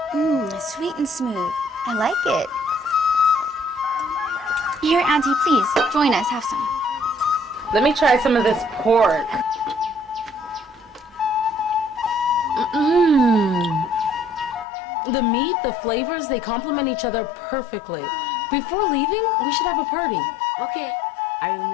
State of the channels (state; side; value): drops out; right; at 14.7 s